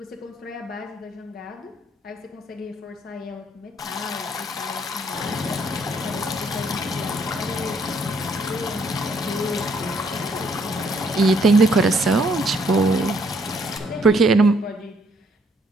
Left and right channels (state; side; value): normal; both; correlation 0.68